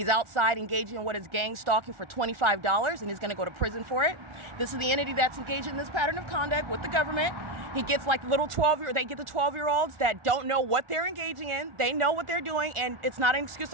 outside engaging in what is gang stalking for $25, and he's going to go to prison for it. This is the entity that's engaged in this pattern of conduct with the government. He gets like little 12-year-olds. They get the 12-year-olds that don't know what they're engaging in. They know what they're doing, and it's not an excuse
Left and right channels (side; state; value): left; late; 1.4 ms